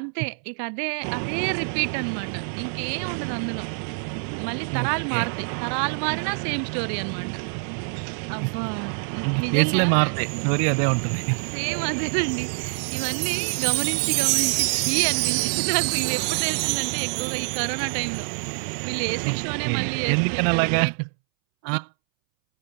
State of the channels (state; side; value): silent; left; 62 dB below the other